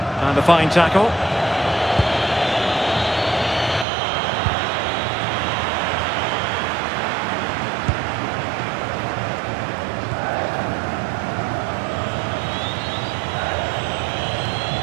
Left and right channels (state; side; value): drops out; left; at 3.9 s